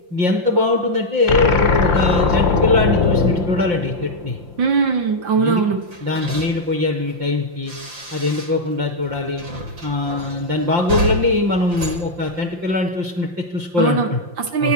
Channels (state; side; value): late; left; 5.7 ms